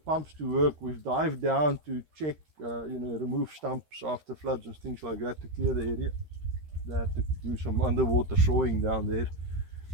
to work. We've dived down to check, remove stumps after floods and things like that to clear the area. They had to do some underwater sawing down there,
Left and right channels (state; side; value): late; left; 13 ms